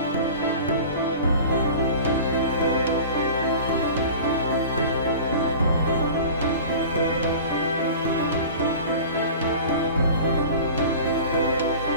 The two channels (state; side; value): inverted; both; correlation -0.38